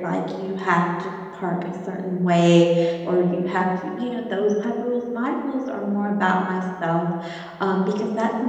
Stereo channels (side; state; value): both; identical; correlation 1.00